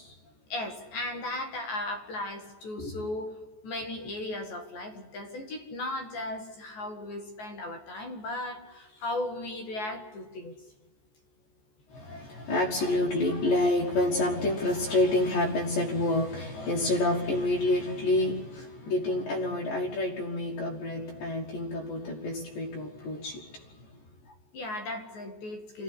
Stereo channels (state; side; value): late; right; 14 ms